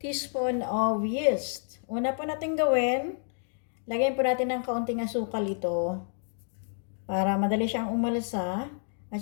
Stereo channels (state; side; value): silent; right; 58 dB below the other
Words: of yeast. Una po natin gawin, lagyan po natin ng kaunting asukal ito para madali siyang umalsa at